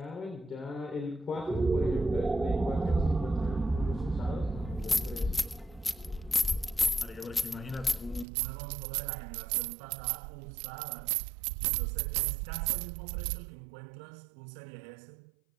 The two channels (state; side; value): drops out; left; at 8.2 s